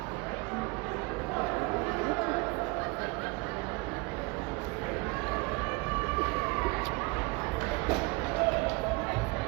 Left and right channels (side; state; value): left; quieter; 26.4 dB